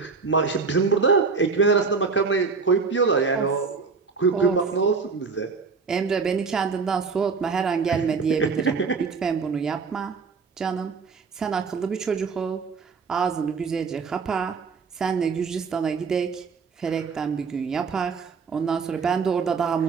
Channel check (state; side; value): quieter; left; 5.0 dB